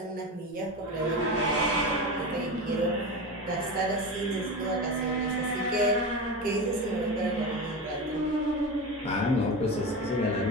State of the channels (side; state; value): both; normal; correlation 0.23